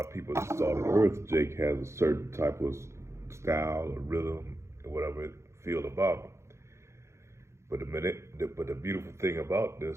people that started earth, Jake has a certain type of style or rhythm or whatever it feel about him. But the beautiful thing about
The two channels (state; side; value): late; left; 0.13 ms